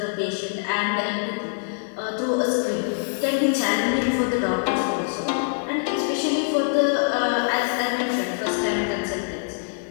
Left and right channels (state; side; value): silent; right; 55 dB below the other